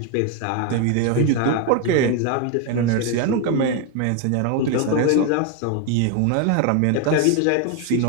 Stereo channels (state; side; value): different; both; correlation 0.01